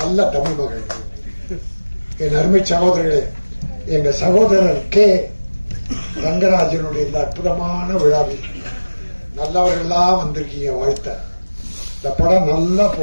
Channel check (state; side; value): inverted; both; correlation -1.00